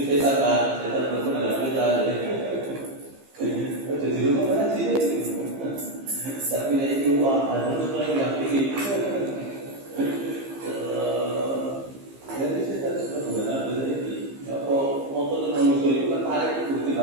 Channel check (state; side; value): late; left; 15 ms